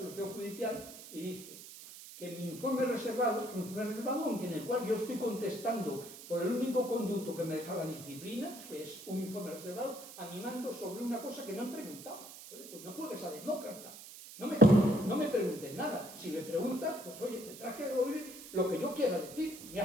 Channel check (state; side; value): noise; right; hiss, 14 dB below the sound